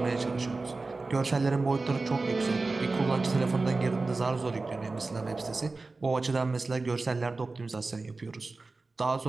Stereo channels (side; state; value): left; quieter; 3.6 dB